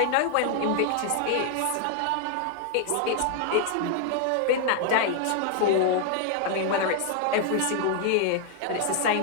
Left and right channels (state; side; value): different; both; correlation 0.00